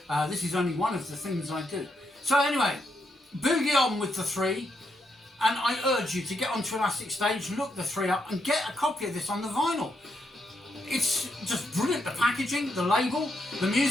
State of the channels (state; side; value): normal; both; correlation 0.79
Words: This is only one of the things I do. So anyway, boogie on with the three, and I urge you to get onto Elastic Stage, look the three up, and get a copy of this on the vinyl. It's just brilliant, the packaging, the label, the